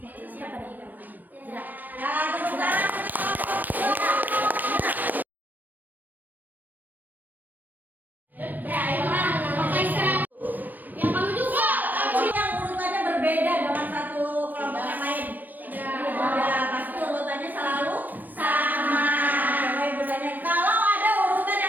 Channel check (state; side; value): late; left; 0.088 ms